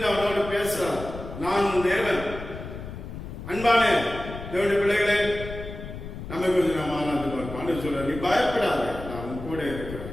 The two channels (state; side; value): noise; left; rumble, 10 dB below the sound